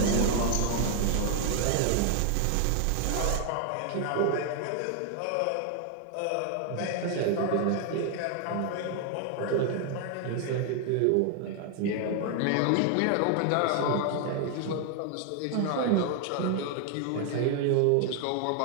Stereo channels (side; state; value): both; different; correlation 0.00